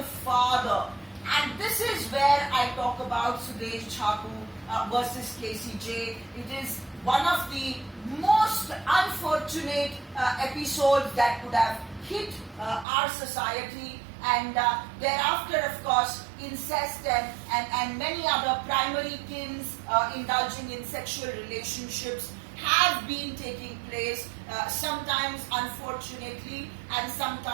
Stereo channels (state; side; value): drops out; left; at 12.9 s